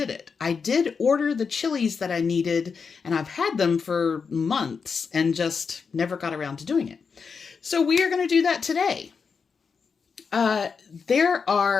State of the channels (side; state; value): right; quieter; 5.6 dB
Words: it. I did order the chilies that I needed, and I've had them for months and just never got around to doing it. So we are going to do that today. There